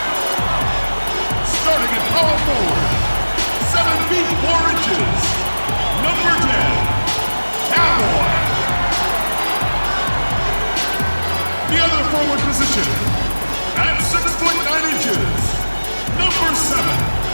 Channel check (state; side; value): inverted; both; correlation -1.00